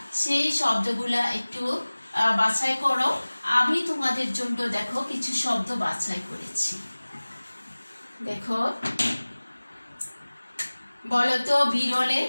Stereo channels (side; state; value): both; inverted; correlation -1.00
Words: সেই শব্দগুলা একটু বাছাই করো। আমি তোমাদের জন্য দেখো কিছু শব্দ বাছাই করেছি। দেখো, বলো তো বিরলে।